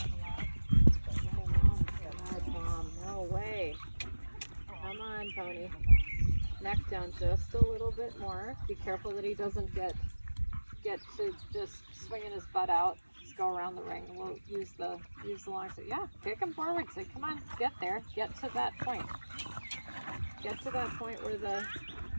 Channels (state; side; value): inverted; both; correlation -1.00